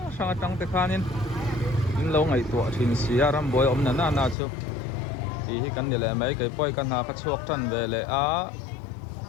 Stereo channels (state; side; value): drops out; right; at 4.4 s